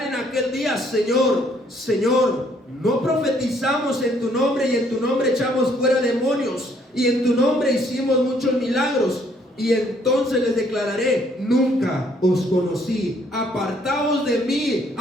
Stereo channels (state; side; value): normal; both; correlation 0.66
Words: en aquel día: Señor, Señor, no profetizamos en tu nombre, y en tu nombre echamos fuera demonios, y en tu nombre hicimos muchos milagros. Y entonces les declararé: nunca os conocí, apartaos de mí,